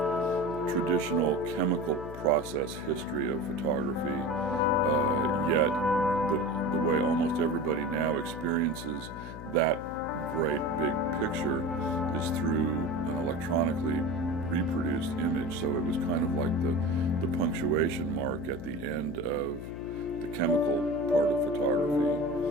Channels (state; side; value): noise; left; hum, 11 dB below the sound